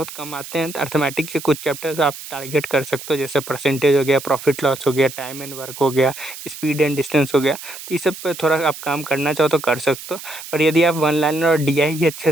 कम आते हैं, तो अर्थमेटिक के कुछ चैप्टर्स आप टारगेट कर सकते हो, जैसे परसेंटेज हो गया, प्रॉफिट लॉस हो गया, टाइम एंड वर्क हो गया, स्पीड एंड डिस्टेंस हो गया। तो ये सब पे थोड़ा आप काम करना चाहो तो कर सकते हो। पर यदि आप वन लाइनर और डीआई ही अच्छे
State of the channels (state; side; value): noise; right; hiss, 13 dB below the sound